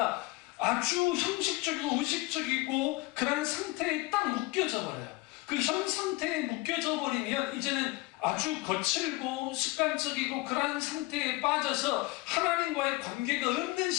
아주 형식적이고 의식적이고 그런 상태에 딱 묶여져 버려요. 그 현 상태에 묶여져 버리면 이제는 아주 거칠고 습관적이고 그런 상태에 빠져서 하나님과의 관계가 없는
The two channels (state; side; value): quieter; right; 22.2 dB